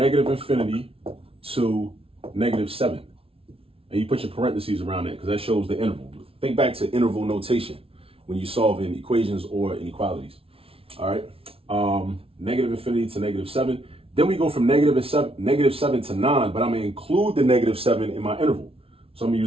infinity to negative 7. And you put your parentheses around it because that shows the interval. Think back to interval notation when you're solving equations or inequalities. All right, negative infinity to negative 7. Then we go from negative 7 to 9, but I'm going to include the negative 7 in my interval. So I'm going to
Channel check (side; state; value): left; late; 0.27 ms